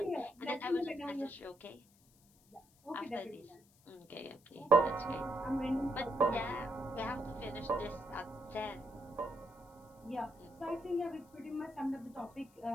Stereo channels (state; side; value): noise; left; hiss, 29 dB below the sound